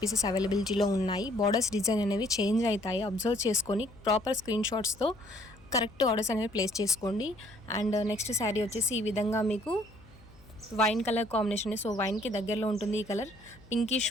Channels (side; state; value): left; noise; hum, 25 dB below the sound